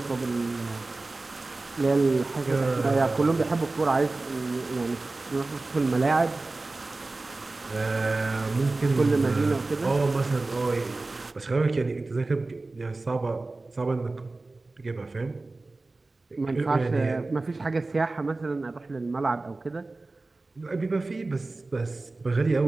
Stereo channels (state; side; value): quieter; left; 3.3 dB